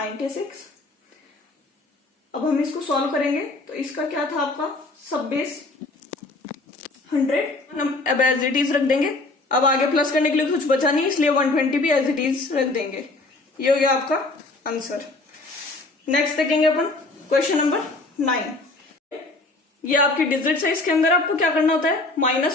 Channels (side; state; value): right; quieter; 3.1 dB